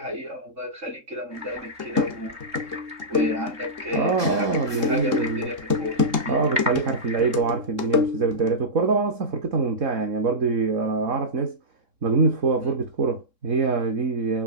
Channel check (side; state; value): left; late; 3.7 ms